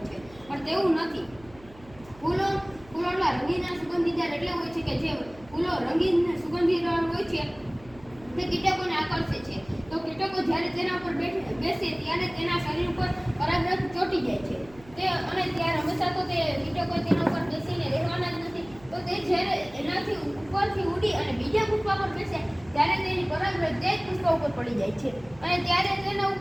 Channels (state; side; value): noise; right; hum, 23 dB below the sound